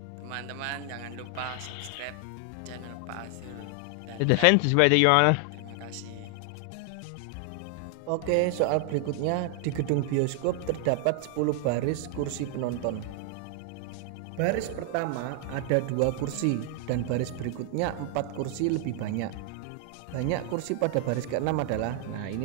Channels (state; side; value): different; both; correlation 0.00